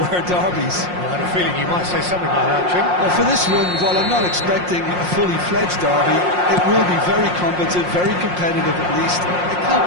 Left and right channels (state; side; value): late; left; 5.6 ms